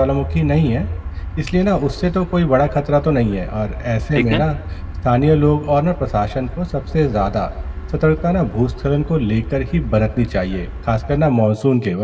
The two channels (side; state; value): both; identical; correlation 1.00